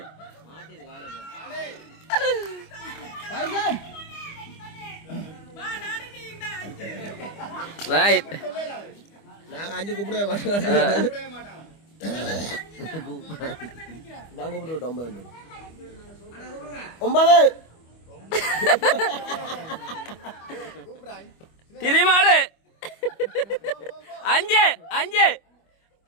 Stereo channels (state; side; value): late; right; 25 ms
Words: ரைட். நாங்க 5 கூப்பிடவே மாட்டோம். நான் கூப்பிட்டு விட்டோம் 9. திரிமாடு 5